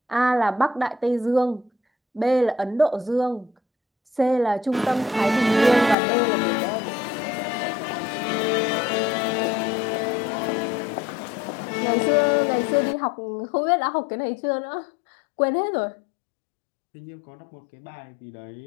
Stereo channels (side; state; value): right; drops out; at 6.0 s